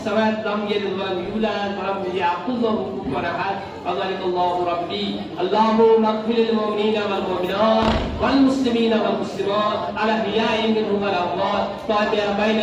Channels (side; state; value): both; identical; correlation 1.00